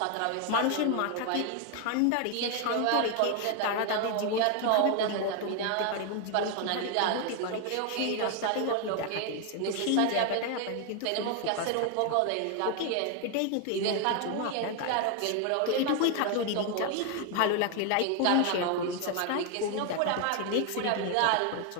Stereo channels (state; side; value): different; both; correlation 0.01